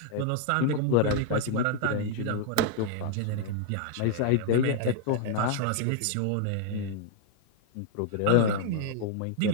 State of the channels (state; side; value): different; both; correlation 0.00